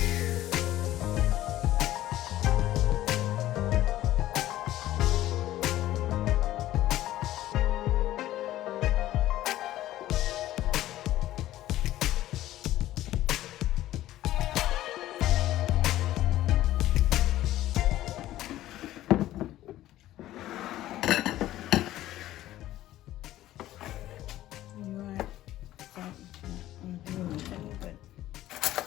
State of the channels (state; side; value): quieter; right; 14.4 dB